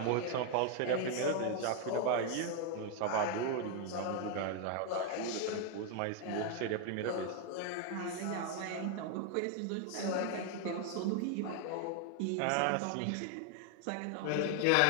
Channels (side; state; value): both; different; correlation 0.00